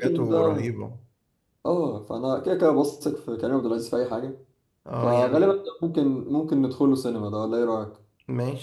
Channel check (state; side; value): identical; both; correlation 1.00